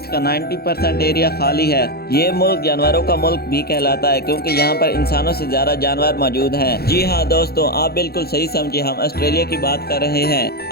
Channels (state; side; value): late; right; 0.46 ms